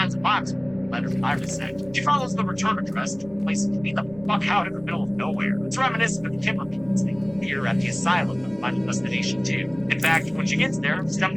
a box with letters Iris sent. She follows the return address to a place to be the fuck out in the middle of nowhere. It's reminiscent of the Timber Peaks thing here at the asylum of Final Destination 2. In fact, when she gets there,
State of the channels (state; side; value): noise; right; rumble, 24 dB below the sound